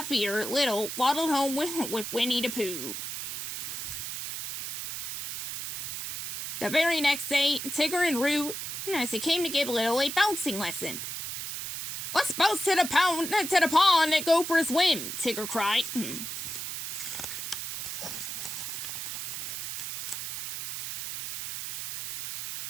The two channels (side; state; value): right; noise; hiss, 5 dB below the sound